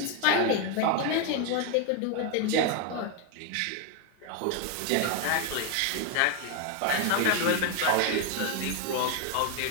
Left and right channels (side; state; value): both; different; correlation 0.01